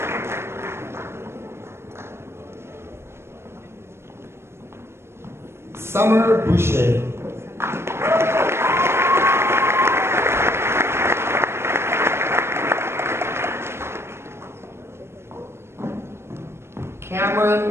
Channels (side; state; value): left; late; 0.12 ms